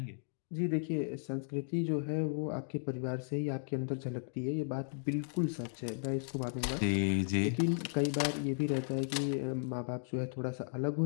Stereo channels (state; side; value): silent; right; digital silence